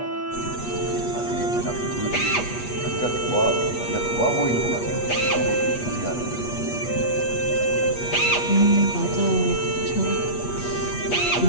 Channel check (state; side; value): late; right; 8.3 ms